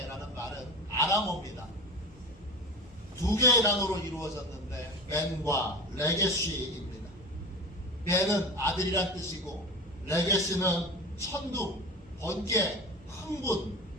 말은 아람어입니다. 두 개의 단어로 이루어졌는데 벤과 레게시입니다. 벤은 아들이란 뜻이고 레게시는 천둥, 번개, 흥분,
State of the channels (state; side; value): normal; both; correlation 0.30